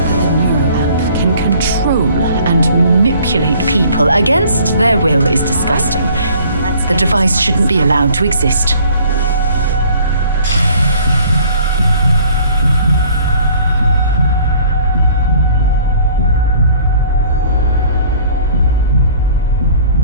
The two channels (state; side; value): inverted; both; correlation -0.53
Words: Can control and manipulate people against their will is disgusting. The device shouldn't be allowed to exist.